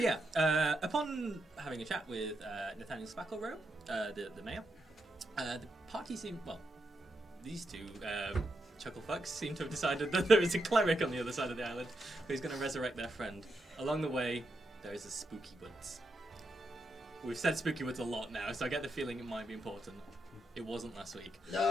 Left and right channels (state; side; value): normal; both; correlation 0.83